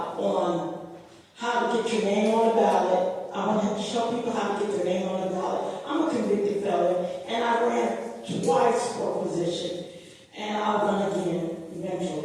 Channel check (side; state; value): both; identical; correlation 1.00